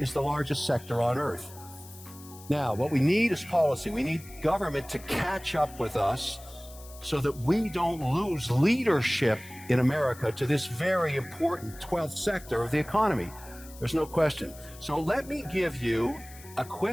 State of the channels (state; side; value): noise; left; hiss, 19 dB below the sound